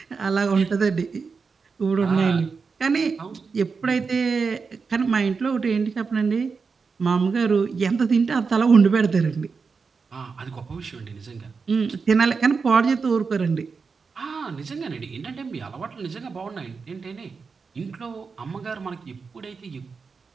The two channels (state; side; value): quieter; left; 5.1 dB